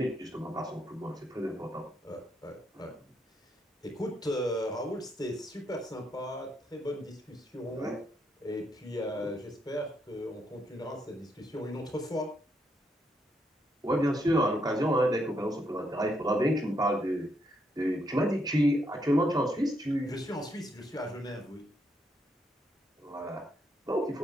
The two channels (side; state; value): both; normal; correlation 0.77